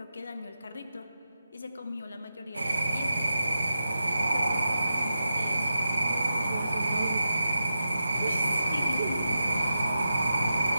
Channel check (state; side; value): inverted; both; correlation -0.89